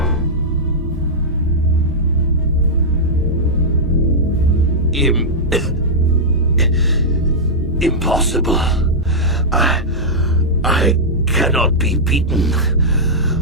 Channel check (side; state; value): both; normal; correlation -0.09